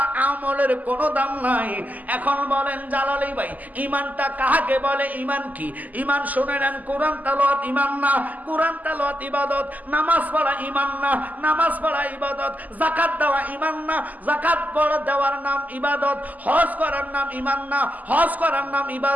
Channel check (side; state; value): left; late; 0.080 ms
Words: আমলের কোনো দাম নাই। এখন বলেন জালালি ভাই, ঈমানটা কাকে বলে? ঈমান কি? ঈমান শুনে নেন, কোরআন তেলাওয়াত ঈমান না, কোরআন তেলাওয়াত ইবাদত। নামাজ পড়া ঈমান না, নামাজ পড়া ইবাদত। যাকাত দেওয়া ঈমান না, যাকাত পড়া দেওয়ার নাম ইবাদত। হজ করার নাম ঈমান না, হজ করার নাম